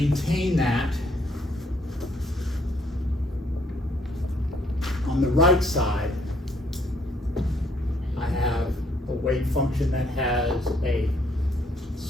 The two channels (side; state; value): both; normal; correlation 0.68